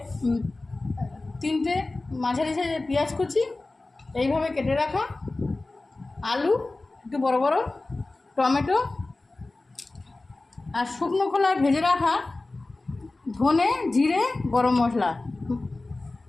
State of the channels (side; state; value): right; quieter; 3.1 dB